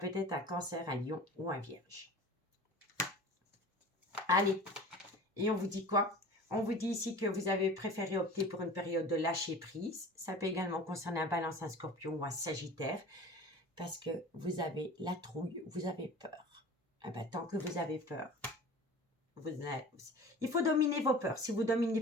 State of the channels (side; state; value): both; normal; correlation 0.39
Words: être un Cancer, un Lion ou un Vierge. Allez, et on vous dit quoi? On vous dit ici que vous avez préféré opter pour une période de lâcher prise. Ça peut également concerner un Balance, un Scorpion ou un Sagittaire. Parce que vous avez la trouille, vous avez peur. Eh bien, tant que vous avez peur, il faut dominer vos peurs. Si vous ne dominez